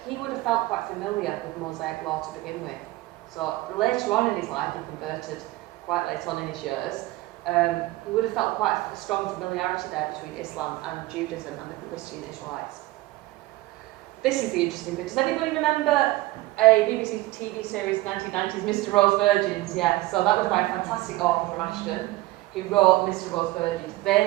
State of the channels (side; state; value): left; quieter; 18.7 dB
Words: he would have felt quite familiar with Mosaic law to begin with. So later on in his life, he converted quite late on in his years. He would have felt quite a strong familiarity there between Islam and Judaism and the Christian Israelites. This is the interesting bit. Does anybody remember a BBC TV series, 1990s, Mr. Rowe's Virgins? Yeah, so that was by a fantastic author from Ashton, who wrote Mr. Rowe's Virgins,